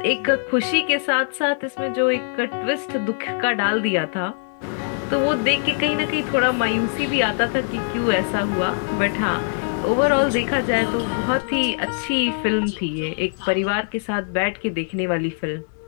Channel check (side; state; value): right; silent; digital silence